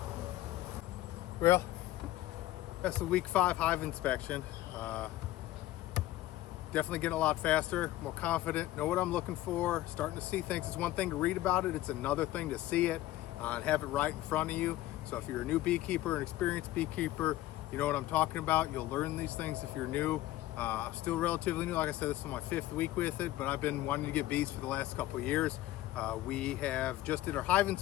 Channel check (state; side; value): quieter; right; 15.6 dB